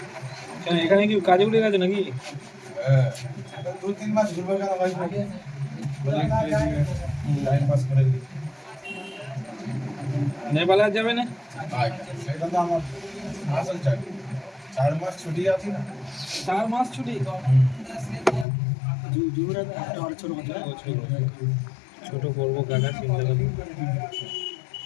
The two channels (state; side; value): drops out; right; at 18.4 s